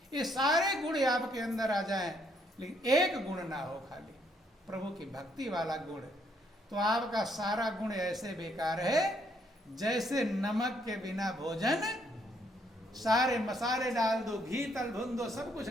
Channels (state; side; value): normal; both; correlation 0.70